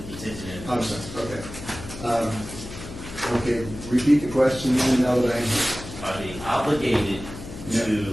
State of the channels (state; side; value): noise; left; hum, 12 dB below the sound